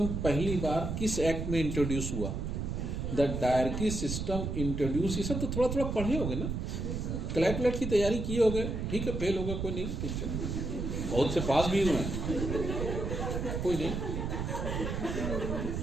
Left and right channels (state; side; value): noise; right; rumble, 3 dB below the sound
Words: पहली बार किस एक्ट में इंट्रोड्यूस हुआ? द डायरकी सिस्टम इंट्रोड्यूस, ये सब तो थोड़ा थोड़ा पढ़े होगे ना, क्लैट की तैयारी किए होगे, ठीक है, फेल होगा कोई नहीं, ठीक है, बहुत से पास भी हुए हैं, कोई नहीं।